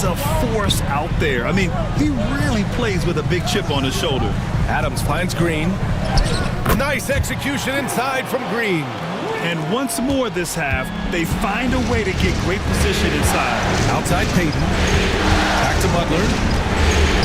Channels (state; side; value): identical; both; correlation 1.00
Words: a force out there. I mean, he really plays with a big chip on his shoulder. Adams finds Green. Nice execution inside from Green. And once more this half, they find a way to get great position inside. Outside Payton. Back to Butler.